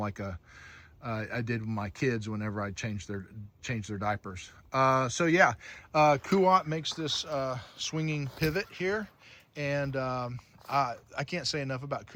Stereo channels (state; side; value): identical; both; correlation 1.00